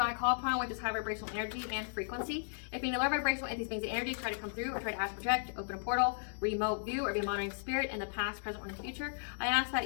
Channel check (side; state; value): right; silent; digital silence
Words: I call upon, which is high vibrational energy and frequency. If any low vibrational entities, beings, and energy try to come through or try to ask, project, open a portal, remote view, or be a monitoring spirit in the past, present, or in the future, I ask that